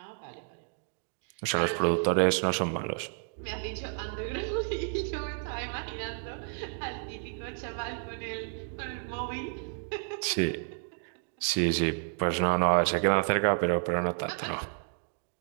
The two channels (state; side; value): silent; left; 57 dB below the other